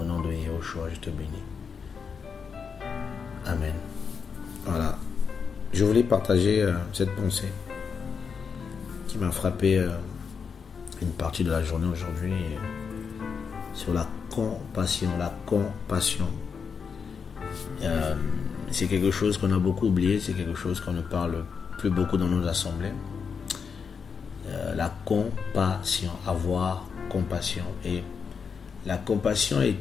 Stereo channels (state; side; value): quieter; right; 6.0 dB